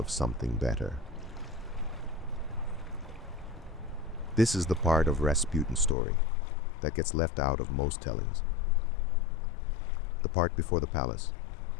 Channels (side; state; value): right; drops out; at 6.0 s